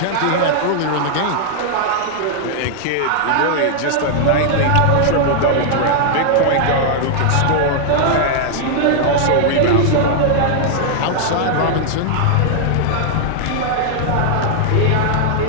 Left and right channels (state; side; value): different; both; correlation -0.01